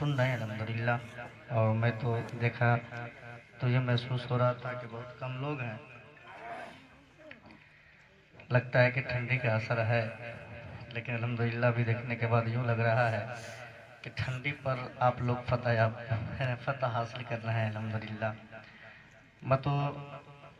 रहे हैं अल्हम्दुलिल्लाह। और मैं तो देखा तो ये महसूस हो रहा था कि बहुत कम लोग हैं, लगता है कि ठंडी का असर है, लेकिन अल्हम्दुलिल्लाह भी देखने के बाद यूँ लग रहा है कि ठंडी पर आप लोग फतह हासिल कर रहे हैं अल्हम्दुलिल्लाह।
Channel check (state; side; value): identical; both; correlation 1.00